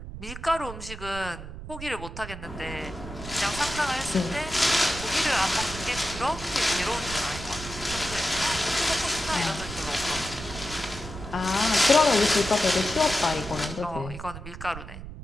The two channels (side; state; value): right; noise; rumble, 11 dB below the sound